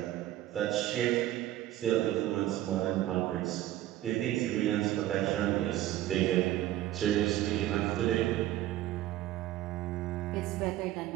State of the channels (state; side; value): quieter; left; 14.1 dB